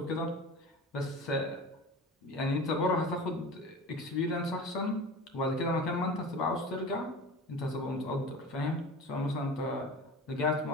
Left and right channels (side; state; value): both; normal; correlation 0.34